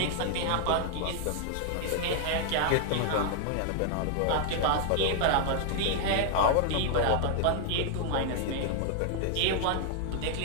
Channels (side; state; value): both; different; correlation 0.00